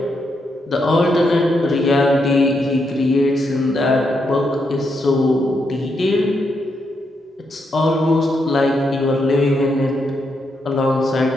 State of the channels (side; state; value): both; normal; correlation 0.80